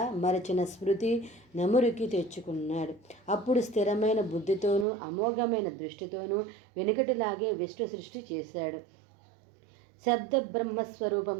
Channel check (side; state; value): left; drops out; at 4.9 s